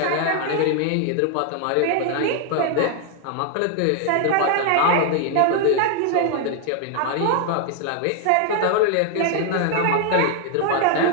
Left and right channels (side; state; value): both; different; correlation 0.00